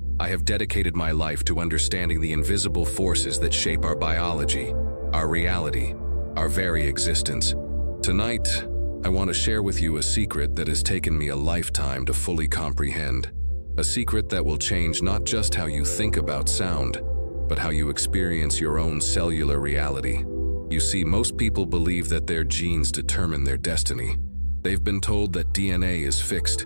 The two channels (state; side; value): inverted; both; correlation -1.00